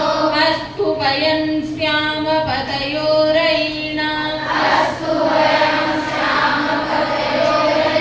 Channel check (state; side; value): identical; both; correlation 1.00